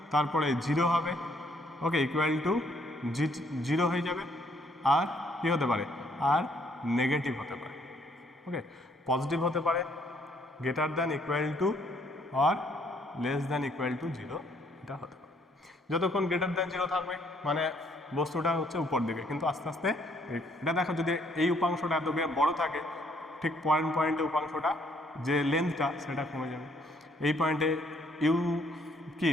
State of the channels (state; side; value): normal; both; correlation 0.66